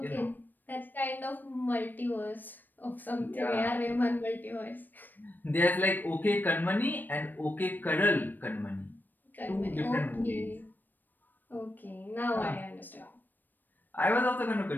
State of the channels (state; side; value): late; right; 0.090 ms